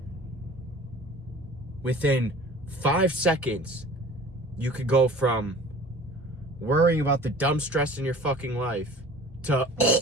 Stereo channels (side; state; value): both; normal; correlation 0.45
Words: within 5 seconds, you could go from worrying about the dumb stress in your fucking life to